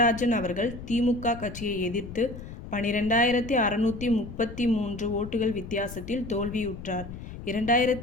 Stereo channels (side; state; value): left; noise; rumble, 11 dB below the sound